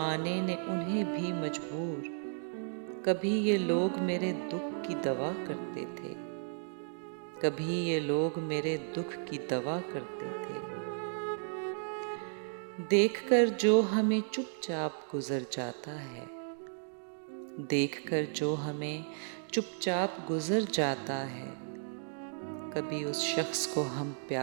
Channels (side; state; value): left; silent; digital silence